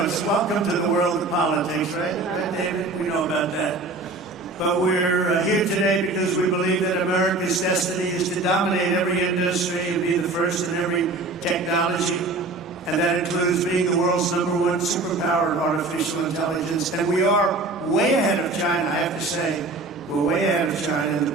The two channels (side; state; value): left; quieter; 3.2 dB